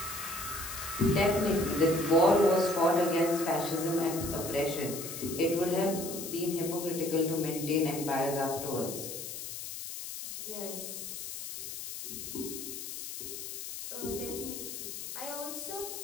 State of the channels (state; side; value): noise; left; hiss, 8 dB below the sound